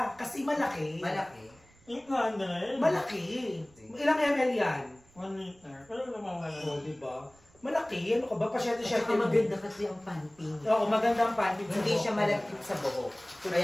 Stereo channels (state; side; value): noise; right; rumble, 29 dB below the sound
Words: kasi malaki. Malaki. 800. Malaki. Ilang ml yan? 1 liter. Pero namawala. Oo, diba? Malaki. Ano ka ba? Pasyente-syente. Maganda kasi ang pantin. Oo, maganda ang panty. Hindi siya malagkit sa buhok.